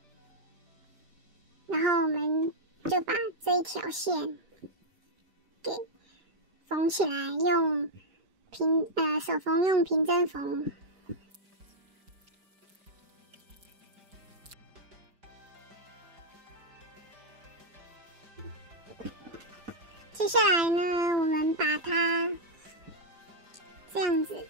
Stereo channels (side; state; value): left; late; 5.0 ms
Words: 然后我们就把这一条线给缝起来，用手缝用平针缝。接下来呢，我们把它这样子，